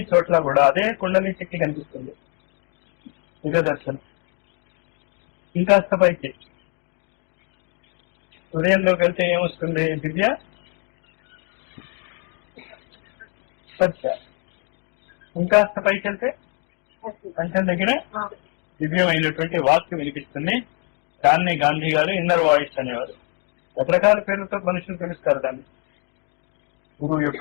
చోట్ల కూడా అదే కుండలి శక్తి కనిపిస్తుంది. దివ్య దర్శనం. ఇంకాస్త పైకి హృదయంలోకి వెళ్తే ఏమొస్తుంది? దివ్య స్పర్శ. ఇంకాస్త పైకి వెళ్తే కంఠం దగ్గర దివ్యమైనటువంటి వాక్యం వినిపిస్తుంది. దాన్ని గాంధీ గారు ఇన్నర్ వాయిస్ అనేవారు. రకరకాల పేర్లతో మనుషులు పిలుస్తారు దాన్ని. గురువు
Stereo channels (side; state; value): right; quieter; 38.1 dB